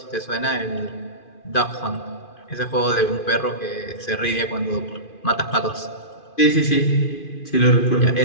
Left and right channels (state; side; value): late; right; 2.5 ms